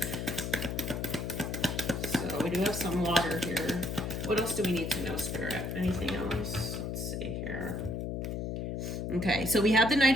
So we do have some water here. What else do we need to know, Spirit? Anything else? Let's see here. Okay, so we have the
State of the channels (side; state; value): left; noise; hum, 3 dB below the sound